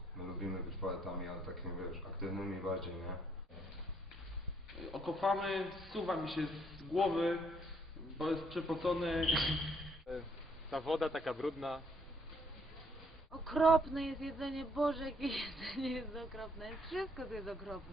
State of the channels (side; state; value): both; normal; correlation 0.69